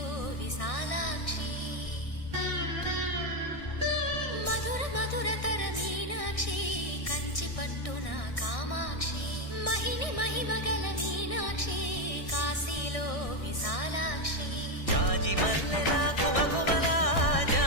విశాలాక్షి మధుర మధురతర మీనాక్షి కంచి పట్టున కామాక్షి మహిని మహిమగల మీనాక్షి కాశీలో విశాలాక్షి జాజి మల్లెల ఘుమఘుమల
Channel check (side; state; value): right; late; 1.6 ms